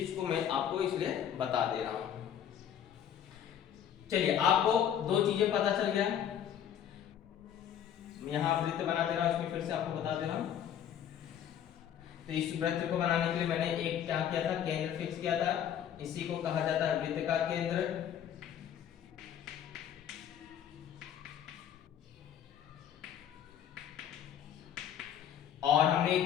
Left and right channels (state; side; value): quieter; right; 9.6 dB